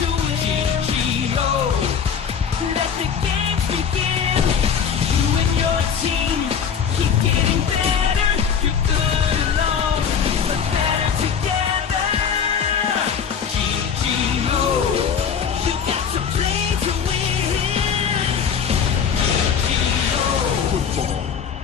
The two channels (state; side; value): quieter; right; 7.2 dB